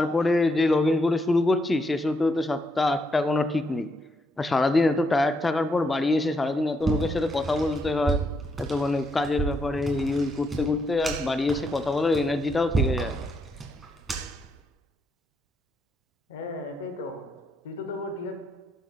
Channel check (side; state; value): both; normal; correlation 0.79